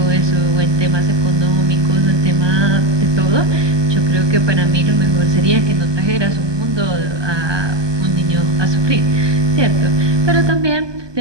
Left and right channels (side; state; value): left; late; 1.2 ms